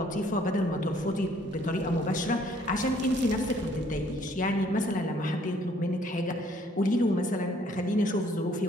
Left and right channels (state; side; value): normal; both; correlation 0.62